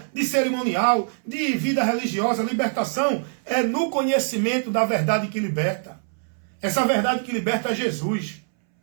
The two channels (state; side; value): silent; left; 63 dB below the other